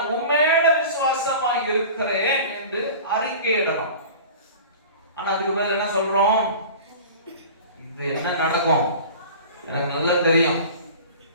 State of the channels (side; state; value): both; inverted; correlation -0.38